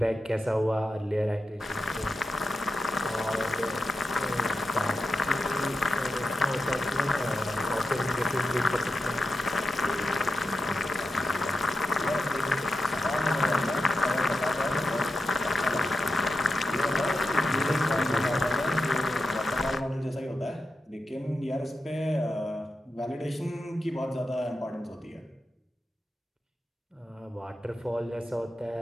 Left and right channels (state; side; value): normal; both; correlation 0.89